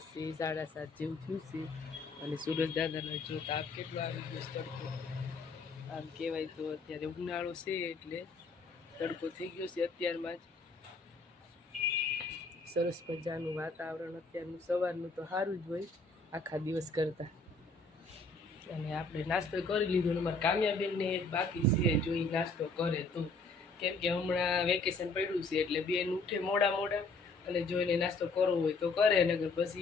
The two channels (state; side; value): quieter; right; 3.5 dB